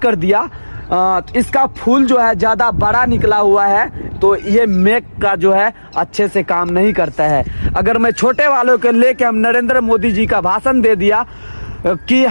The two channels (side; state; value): both; inverted; correlation -1.00